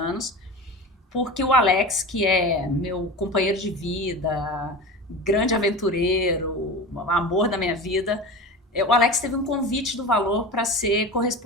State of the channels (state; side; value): normal; both; correlation 0.31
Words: porque o Alex, que é meu companheiro de vida, grande aventureiro, amor da minha vida, o Alex teve um convite do Valor para ser